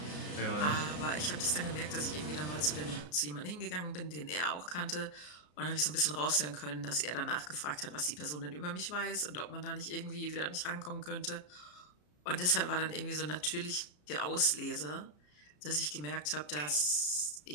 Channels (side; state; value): right; late; 33 ms